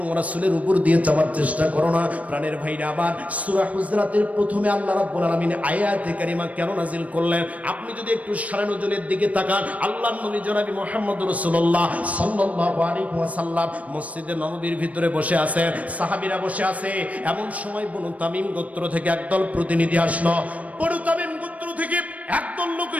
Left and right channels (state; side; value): late; left; 0.068 ms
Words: রাসূলের উপর দিয়ে যাওয়ার চেষ্টা করো না। প্রাণের ভাইরা, আবার সূরা হুজরাতের প্রথমে আল্লাহ রাব্বুল আলামিন আয়াতে কারিমা কেন নাজিল করলেন? আপনি যদি একটু সারা নজরের দিকে তাকান, আল্লাহর নবী জনাবি মুহাম্মদুর রাসূলুল্লাহ সাল্লাল্লাহু আলাইহি ওয়াসাল্লাম মসজিদে নববীর ভিতরে বসে আছেন, সাহাবীরা বসে আছে। এমন সময় বনু তামিম গোত্র থেকে একদল প্রতিনিধি আসলো। বনু তামিম গোত্র থেকে একদল লোক